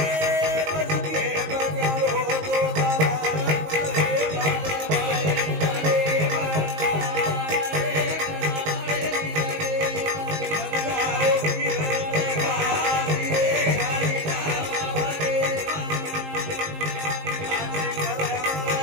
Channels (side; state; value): left; late; 19 ms